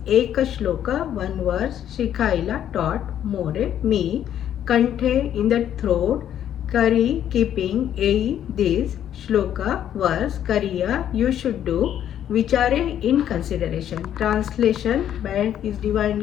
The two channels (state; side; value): quieter; right; 10.4 dB